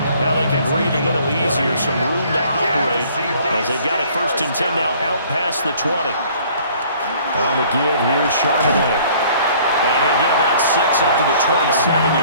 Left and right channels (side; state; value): both; inverted; correlation -0.55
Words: Now they can breathe a little easier, some room to operate as they've got it 1st and 10 now out past the 20. On the give, here's Charbonnet. And he'll get about 6 up to the